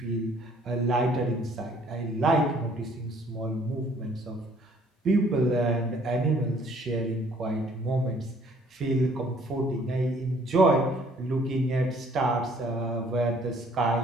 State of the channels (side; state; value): both; normal; correlation 0.60